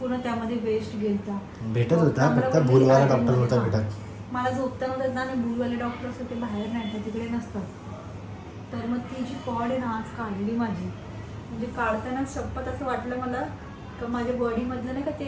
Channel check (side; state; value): both; identical; correlation 1.00